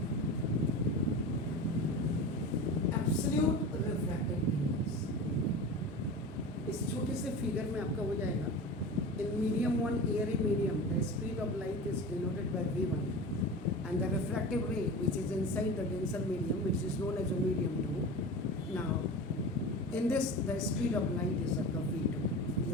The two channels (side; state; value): both; normal; correlation 0.31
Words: एब्सोल्यूट रिफ्रैक्टिव इंडेक्स, इस छोटे से फिगर में आपका हो जाएगा। In medium one, Airy medium, the speed of light is denoted by v1 and the refractive ray which is inside the denser medium, which is known as a medium 2. Now in this the speed of light is आपका v2, ये